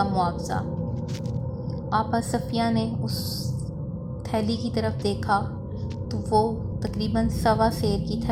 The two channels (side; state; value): both; identical; correlation 1.00